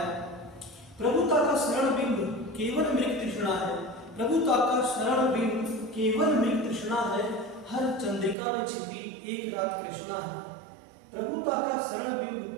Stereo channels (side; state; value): left; drops out; at 8.3 s